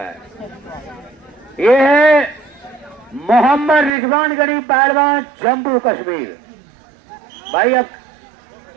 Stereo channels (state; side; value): drops out; left; at 3.9 s